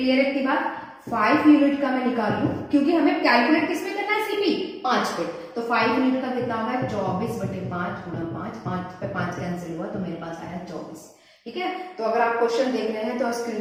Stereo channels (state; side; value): identical; both; correlation 1.00